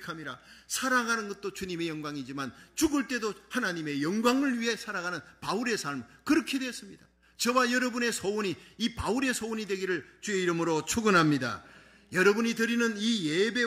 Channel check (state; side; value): identical; both; correlation 1.00